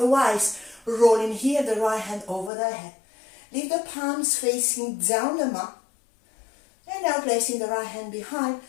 rolling here, the right hand over the head. Leave the palms facing down the mat. And now placing the right hand behind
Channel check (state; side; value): drops out; right; at 2.5 s